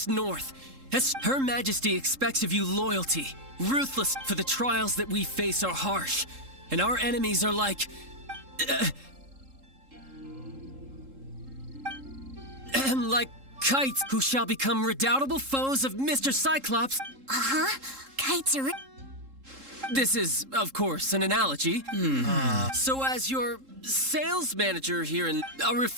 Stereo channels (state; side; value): late; left; 3.7 ms